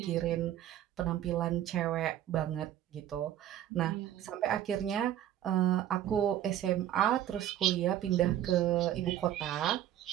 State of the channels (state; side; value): quieter; left; 11.7 dB